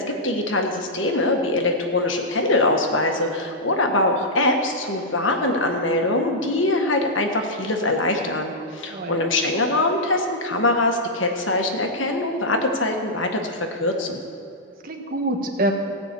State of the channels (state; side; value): normal; both; correlation -0.08